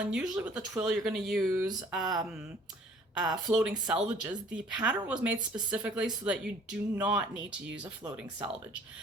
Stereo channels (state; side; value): normal; both; correlation 0.55